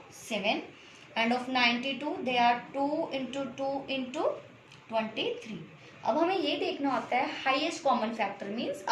7 and of 92 they are 2 into 2 into 23. अब हमें ये देखना होता है हाईएस्ट कॉमन फैक्टर, मीन्स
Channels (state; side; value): identical; both; correlation 1.00